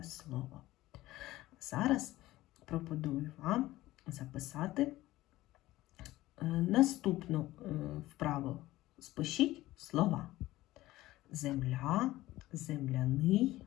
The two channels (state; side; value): quieter; right; 16.8 dB